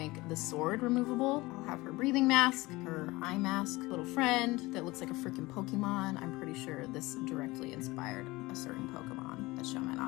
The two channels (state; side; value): quieter; right; 21.1 dB